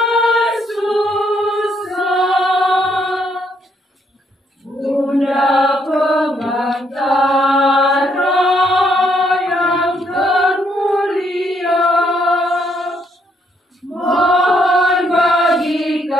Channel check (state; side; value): normal; both; correlation 0.72